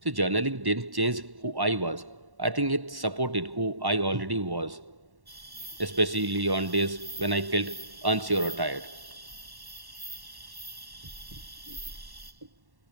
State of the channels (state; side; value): late; left; 1.1 ms